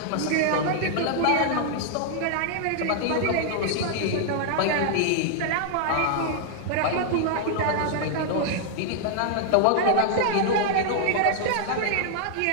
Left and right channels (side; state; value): both; different; correlation -0.01